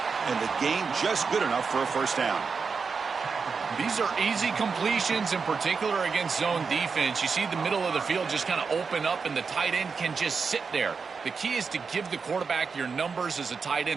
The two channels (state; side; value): quieter; left; 5.2 dB